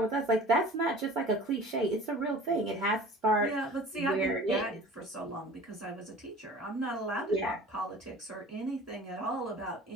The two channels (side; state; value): both; normal; correlation 0.43